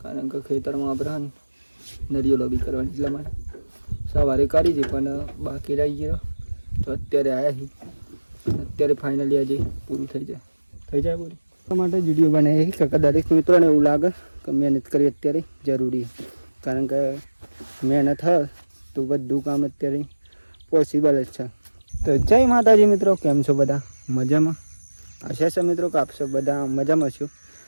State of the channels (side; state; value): both; inverted; correlation -1.00